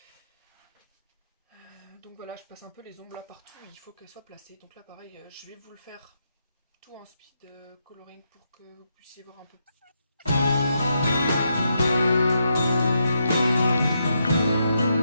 Donc voilà, je passe un peu les ombres là partout, il faut qu'elles soient placées. Donc là pareil, je vais vous le faire tout en speed coloring pour que vous puissiez voir un peu.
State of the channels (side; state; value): both; inverted; correlation -0.81